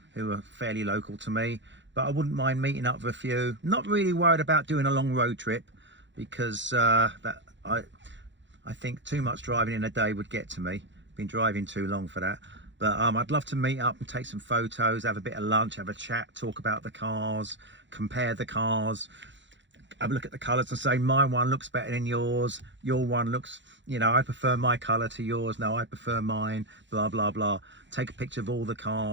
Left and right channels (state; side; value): late; left; 0.54 ms